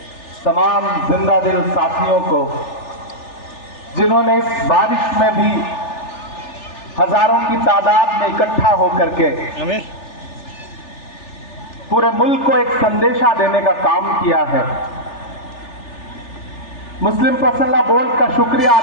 तमाम जिंदा दिल साथियों को, जिन्होंने इस बारिश में भी हजारों की तादाद में इकट्ठा होकर के पूरे मुल्क को एक संदेशा देने का काम किया है। मुस्लिम पर्सनल बोर्ड का शुक्रिया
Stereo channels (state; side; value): late; right; 3.4 ms